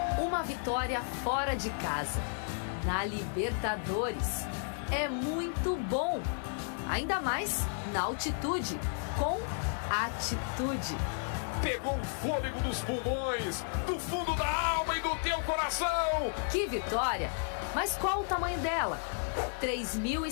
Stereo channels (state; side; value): silent; right; digital silence